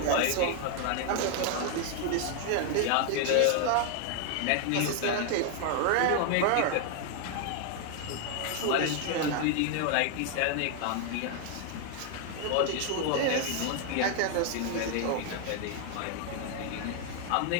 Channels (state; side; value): different; both; correlation 0.00